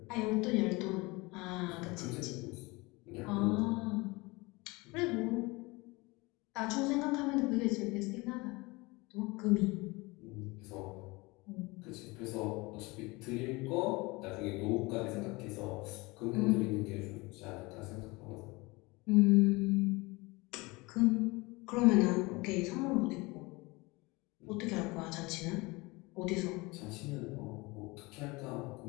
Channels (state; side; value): quieter; right; 24.1 dB